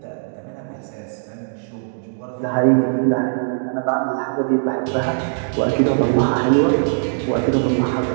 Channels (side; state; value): left; silent; digital silence